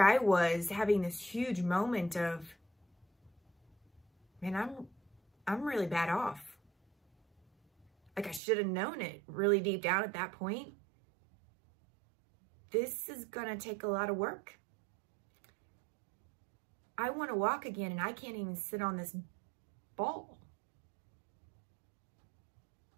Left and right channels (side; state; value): left; drops out; at 8.4 s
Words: I was having this huge moment of, man, I'm really bad off. Like, I should have known it really deep down at that point. This is gonna take a lot of work. I want to walk again and I can't even sit on this ball.